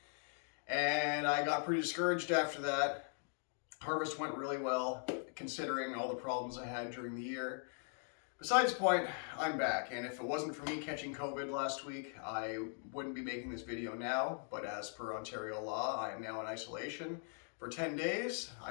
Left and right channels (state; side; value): silent; right; 51 dB below the other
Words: And I got pretty discouraged after that. Harvest went really well, considering all the problems I had during the year. Besides the point, I'm back, and if it wasn't for me catching COVID last week, I wouldn't be making this video now, but as per Ontario law, I am now in isolation for 10 days.